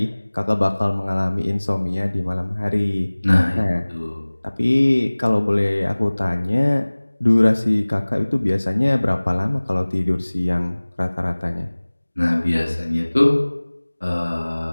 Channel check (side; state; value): both; inverted; correlation -1.00